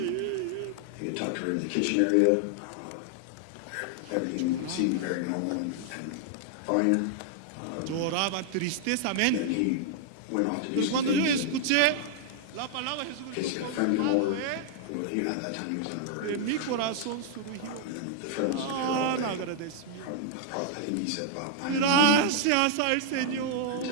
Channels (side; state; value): both; different; correlation 0.00